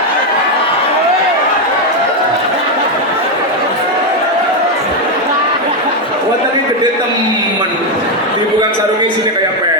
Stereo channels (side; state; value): both; normal; correlation 0.05